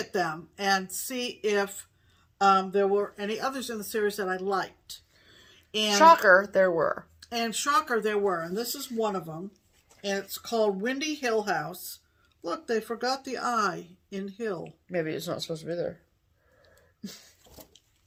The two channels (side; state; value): both; identical; correlation 1.00